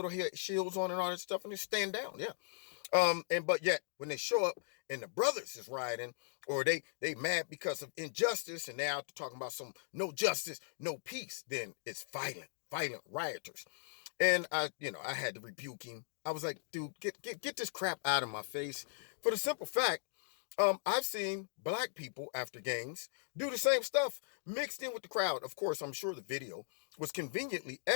shields on and all that stuff, and they stand down. Yeah. But yet when they show up and the brothers is rioting, or they mad because of injustice, and they're out talking about some no justice, no peace, then it's violent rioters. And I had to rebuke him. I was like, dude, get this crap out of my face. For the simple fact, I've seen black people after games do the same stuff mixed in with the crowd. Of course, I'm sure the video was conveniently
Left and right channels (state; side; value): silent; right; digital silence